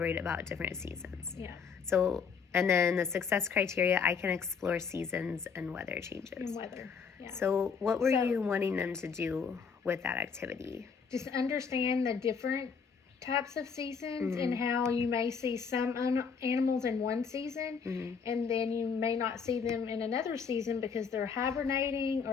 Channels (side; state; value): right; quieter; 6.0 dB